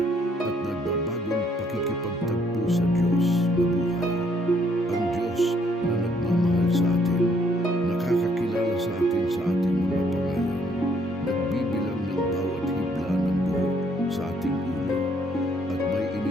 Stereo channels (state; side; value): normal; both; correlation 0.67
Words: at nagbabagong pakikipagtagpo sa Diyos na buhay. Ang Diyos na nagmamahal sa atin, nakakakilala sa atin sa ating mga pangalan, nagbibilang ng bawat hibla ng buhok sa ating ulo, at may